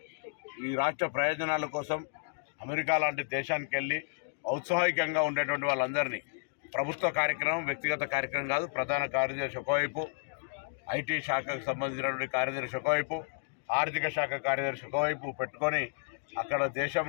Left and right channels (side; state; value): right; silent; digital silence